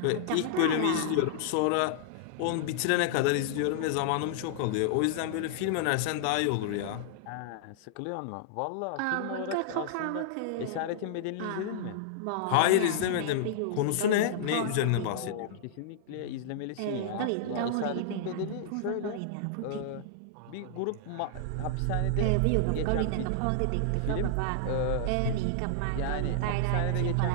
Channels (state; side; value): different; both; correlation -0.01